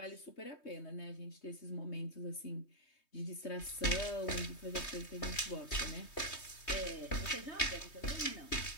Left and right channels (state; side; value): late; right; 3.2 ms